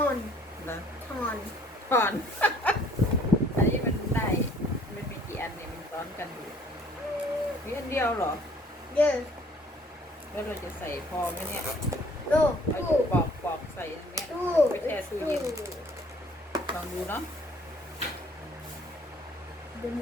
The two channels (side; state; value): both; normal; correlation 0.58